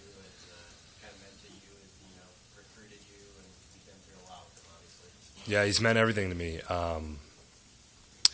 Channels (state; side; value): identical; both; correlation 1.00